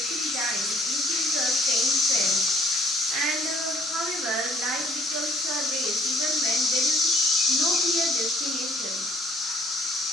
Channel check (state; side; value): normal; both; correlation 0.60